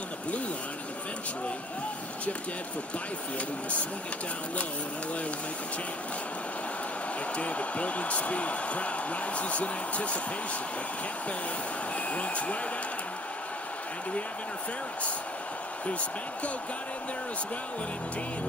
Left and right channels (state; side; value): normal; both; correlation 0.55